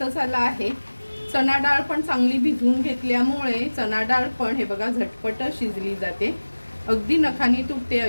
आला आहे. चणा डाळ पण चांगली भिजवून घेतल्यामुळे चणा डाळ पण हे बघा झटपट शिजली जाते. अगदी नखानी तुटते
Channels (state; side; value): inverted; both; correlation -1.00